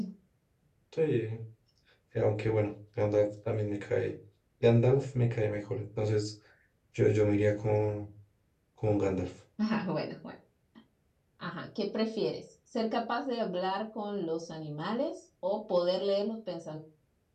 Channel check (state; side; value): identical; both; correlation 1.00